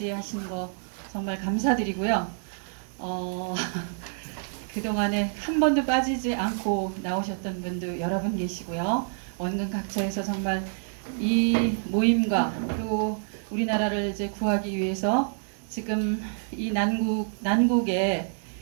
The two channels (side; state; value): left; silent; digital silence